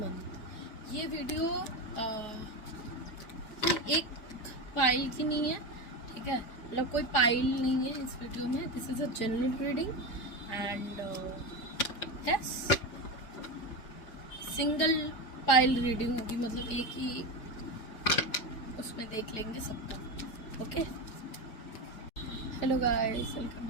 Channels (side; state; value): right; late; 4.8 ms